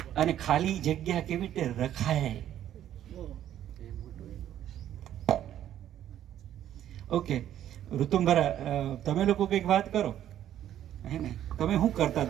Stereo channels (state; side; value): quieter; left; 11.3 dB